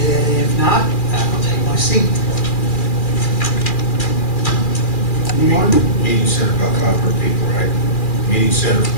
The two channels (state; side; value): late; right; 2.4 ms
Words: not, I'll take my seat. Anyone? Meeting center about 500 people, right? Meeting center